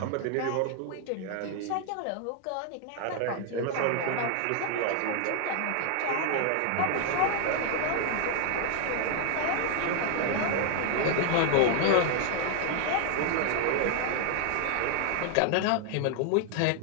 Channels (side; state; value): both; different; correlation 0.00